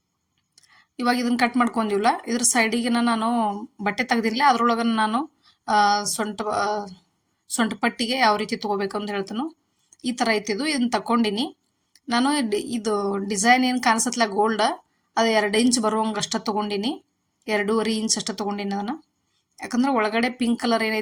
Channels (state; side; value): identical; both; correlation 1.00